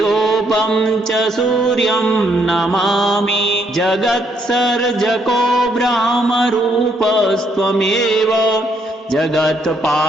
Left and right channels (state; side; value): normal; both; correlation 0.72